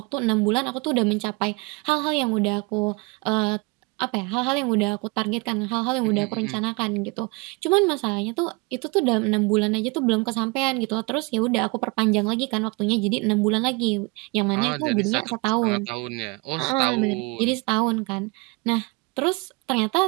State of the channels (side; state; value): left; quieter; 27.3 dB